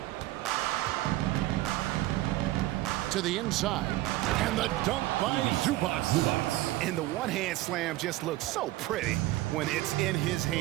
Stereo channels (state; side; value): quieter; left; 17.1 dB